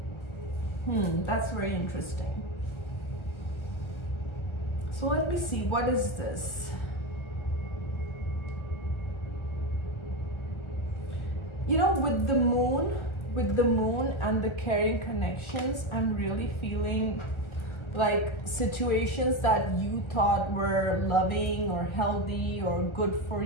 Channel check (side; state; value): right; late; 1.3 ms